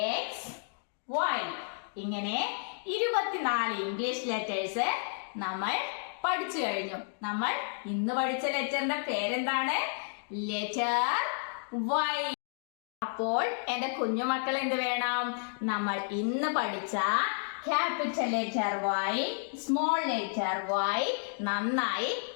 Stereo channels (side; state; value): right; silent; digital silence